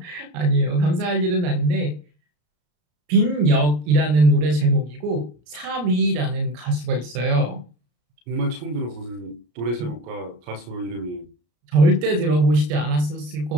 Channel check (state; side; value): late; left; 34 ms